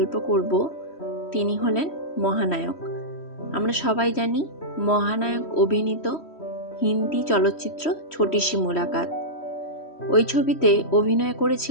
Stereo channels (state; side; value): late; right; 3.1 ms